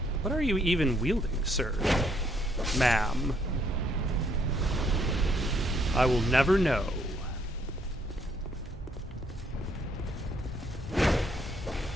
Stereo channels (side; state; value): both; normal; correlation 0.69